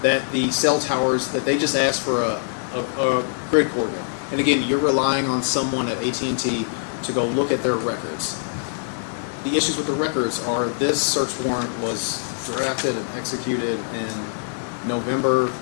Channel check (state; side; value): silent; right; digital silence